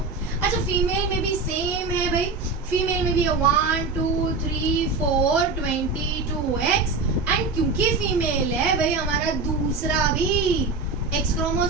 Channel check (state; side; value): quieter; left; 4.0 dB